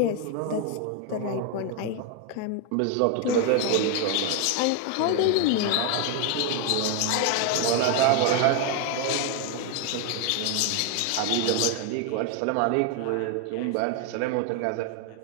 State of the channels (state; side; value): different; both; correlation 0.01